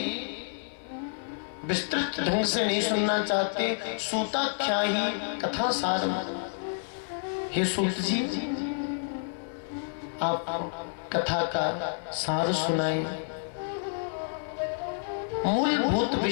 विस्तृत ढंग से नहीं सुनना चाहते। सूताख्या ही कथा सारम, हे सूत जी आप कथा का सार सुनाए, मूलभूत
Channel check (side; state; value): right; silent; 57 dB below the other